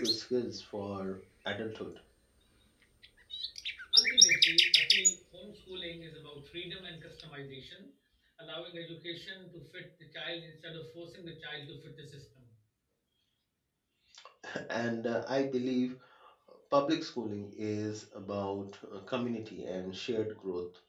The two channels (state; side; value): identical; both; correlation 1.00